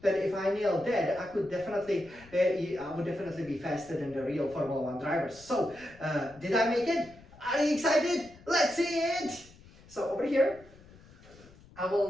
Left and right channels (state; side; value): noise; left; rumble, 23 dB below the sound